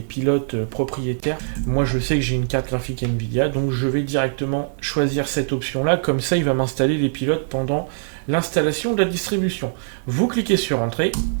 pilotes propriétaires. Moi, je sais que j'ai une carte graphique NVIDIA, donc je vais directement choisir cette option-là. Comme ça, il va m'installer les pilotes pendant l'installation de la distribution. Vous cliquez sur Entrée.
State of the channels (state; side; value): silent; left; digital silence